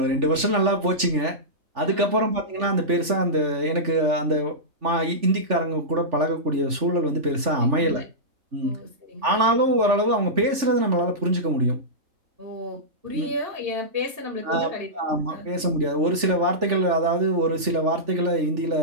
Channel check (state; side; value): late; left; 3.4 ms